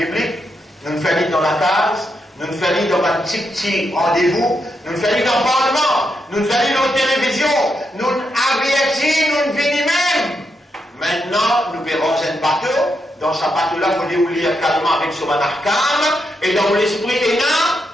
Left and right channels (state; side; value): normal; both; correlation 0.82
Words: nous ne faisons dans la case, nous ne faisons dans un petit rendez-vous, nous ne faisons dans le Parlement, nous ne faisons dans la télévision, nous avertissons, nous venons même. Maintenant, nous verrons un bateau. Dans ce bateau-là, il faut lire calmement avec son arcane, et dans l'esprit est là,